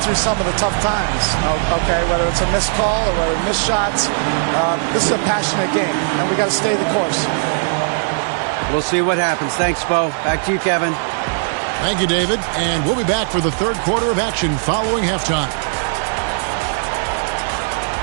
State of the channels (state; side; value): silent; left; digital silence